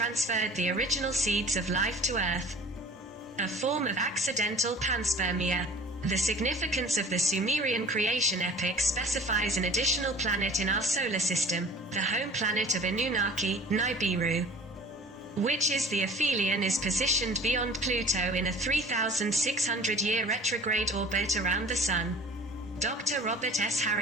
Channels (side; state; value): both; normal; correlation 0.45